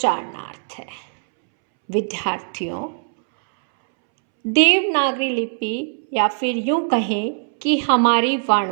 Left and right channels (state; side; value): silent; left; 65 dB below the other